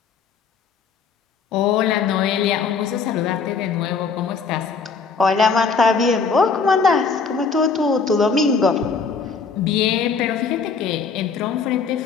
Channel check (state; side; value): quieter; right; 5.3 dB